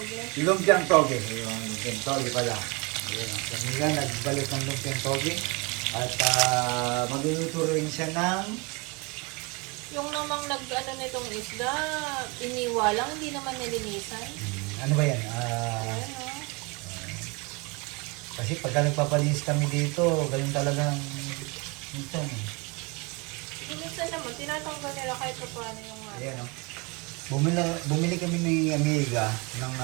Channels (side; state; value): left; quieter; 28.2 dB